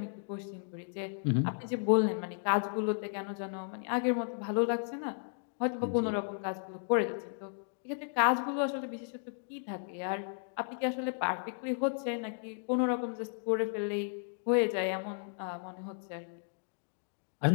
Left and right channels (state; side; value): silent; right; digital silence